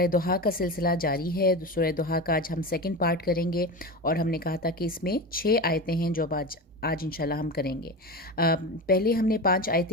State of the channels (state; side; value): normal; both; correlation 0.25